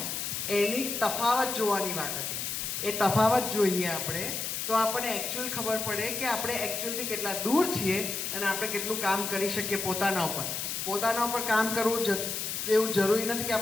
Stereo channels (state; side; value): noise; left; hiss, 3 dB below the sound